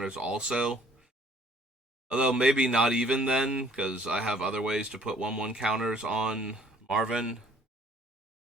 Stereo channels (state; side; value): normal; both; correlation 0.59